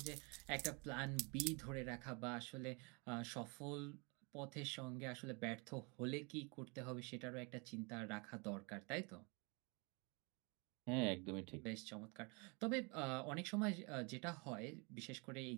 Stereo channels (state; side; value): quieter; left; 30.9 dB